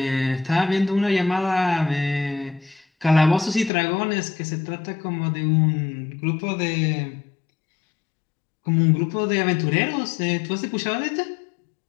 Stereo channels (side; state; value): right; drops out; at 3.7 s